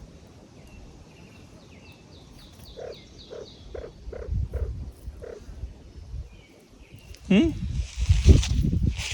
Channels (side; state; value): both; identical; correlation 1.00